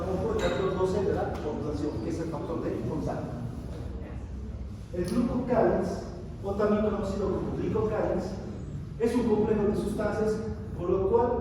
el factor 12 de la coagulación, que es el factor de contacto. El glucocálix, o también conocido como glicocálix, es un complejo de sustancias por lo cual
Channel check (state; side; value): identical; both; correlation 1.00